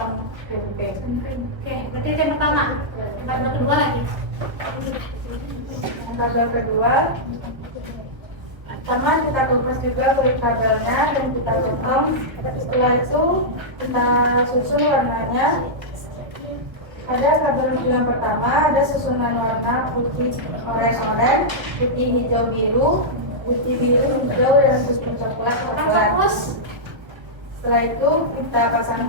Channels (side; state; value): left; late; 1.5 ms